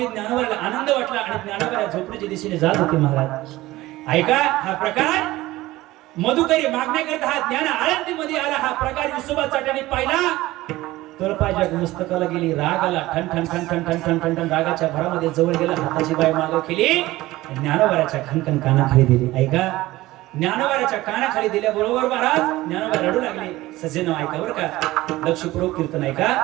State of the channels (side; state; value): left; quieter; 17.8 dB